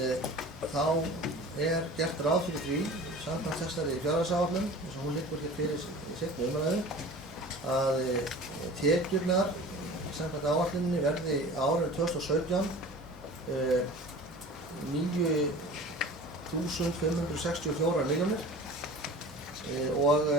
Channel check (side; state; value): both; normal; correlation 0.40